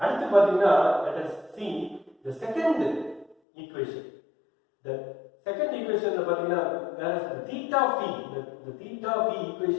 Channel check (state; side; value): drops out; right; at 3.4 s